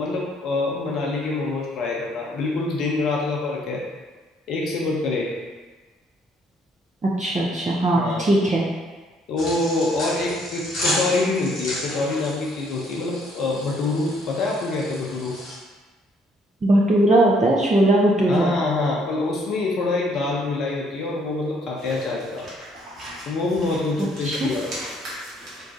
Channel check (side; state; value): both; normal; correlation 0.66